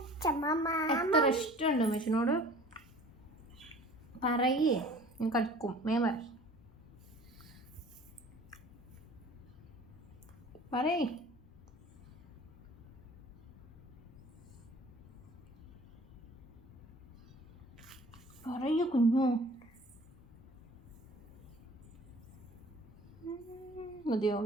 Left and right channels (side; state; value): both; normal; correlation 0.47